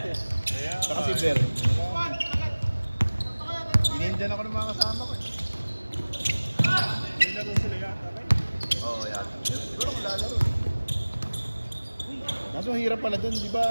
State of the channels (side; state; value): both; inverted; correlation -1.00